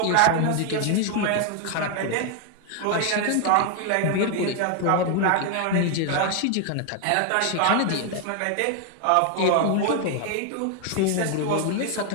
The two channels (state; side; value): different; both; correlation 0.00